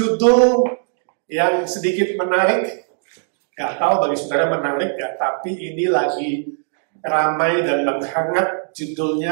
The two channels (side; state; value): left; silent; digital silence